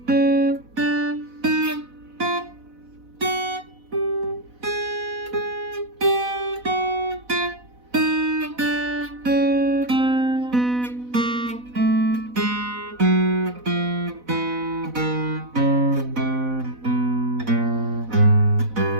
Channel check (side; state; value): left; late; 4.0 ms